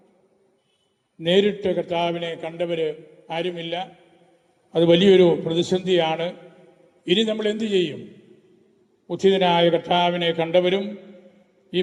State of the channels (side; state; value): both; identical; correlation 1.00